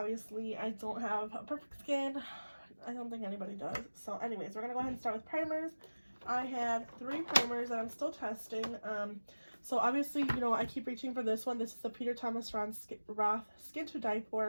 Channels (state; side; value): inverted; both; correlation -1.00